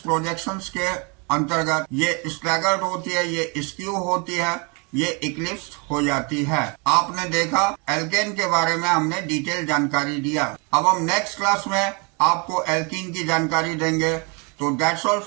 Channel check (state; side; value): quieter; left; 32.4 dB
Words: के अंतर्गत ये स्टैगर्ड होती है, ये स्क्यू होती है, ये इक्लिप्स्ड हो जाती है। आपने देखा एल्केन के बारे में हमने डिटेल जानकारी दिया। अब हम नेक्स्ट क्लास में आपको एल्कीन की जानकारी देंगे। So that's all